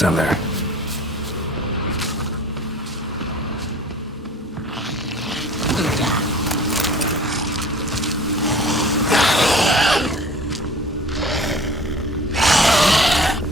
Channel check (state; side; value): normal; both; correlation 0.45